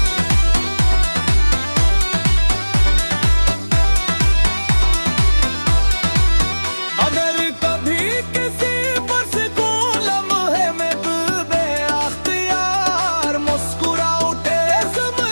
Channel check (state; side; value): inverted; both; correlation -1.00